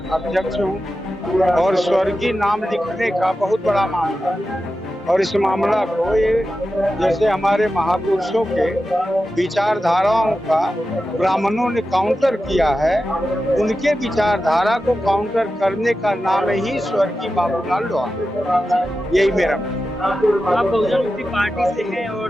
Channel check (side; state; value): both; normal; correlation 0.92